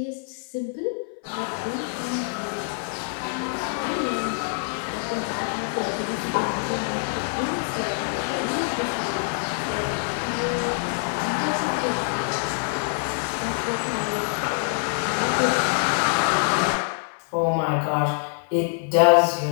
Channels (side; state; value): right; silent; 59 dB below the other